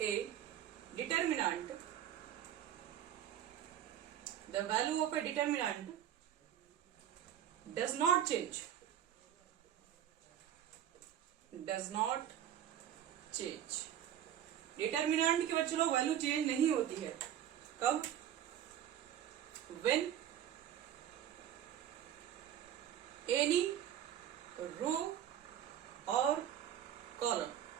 A determinant, the value of A determinant does not change, does not change. Determinant की बच्चे लोग वैल्यू चेंज नहीं होती है। कब? व्हेन एनी रो और column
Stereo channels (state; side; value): quieter; left; 10.6 dB